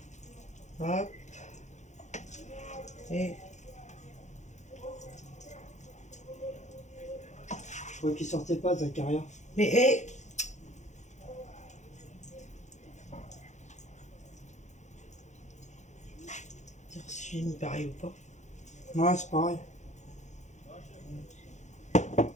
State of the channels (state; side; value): late; right; 0.34 ms